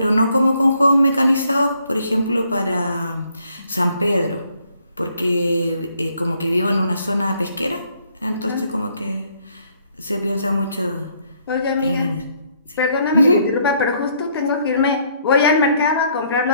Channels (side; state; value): both; inverted; correlation -0.68